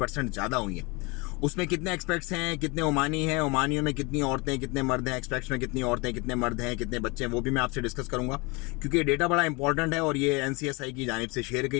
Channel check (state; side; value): quieter; right; 27.4 dB